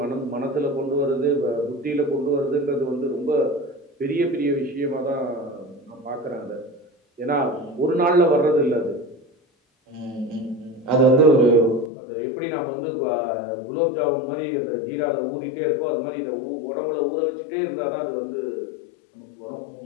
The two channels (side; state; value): right; drops out; at 11.9 s